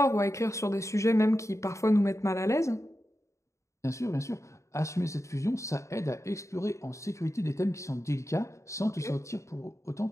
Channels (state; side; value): late; right; 0.14 ms